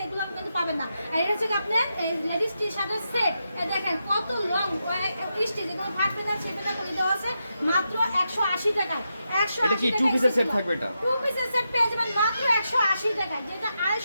এগুলো কিন্তু পাবেন না। আর এটা হচ্ছে আপনার লেডিস টি শার্টের সেট। দেখেন কত লং স্টিচ, এগুলো ফাটবে না ছেপে করে দেওয়া আছে মাত্র 180 টাকায়। 180 এটা কি টু পিসের সেট থাকবে? এটা টু পিসের সেট পেয়ে যাবেন মাত্র 180 টাকায়, যেটা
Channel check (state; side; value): inverted; both; correlation -0.86